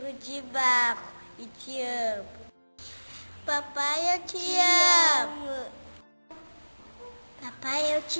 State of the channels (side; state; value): both; inverted; correlation -1.00